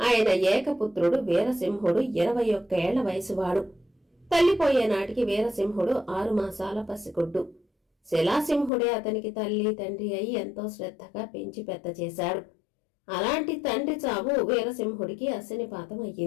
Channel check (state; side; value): drops out; right; at 8.7 s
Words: ఏకపుత్రుడు వీరసింహుడు 21 ఏళ్ల వయసువాడు. తల్లిపోయే నాటికి వీరసింహుడు 6 మాసాల పసిగుడ్డు. శిలాసింహుడే అతనికి తల్లి తండ్రి అయి ఎంతో శ్రద్ధగా పెంచి పెద్ద చేశాడు. అలాంటి తండ్రి చావు వీరసింహుడికి అశనిపాతం